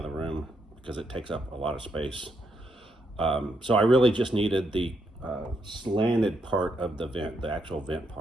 room because it takes up a lot of space. So I really just needed the slanted part of the vent, the actual vent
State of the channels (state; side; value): normal; both; correlation 0.78